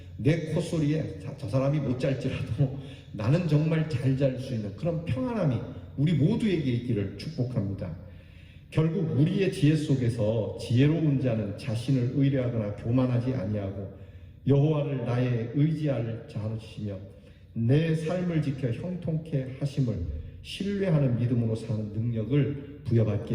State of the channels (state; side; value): identical; both; correlation 1.00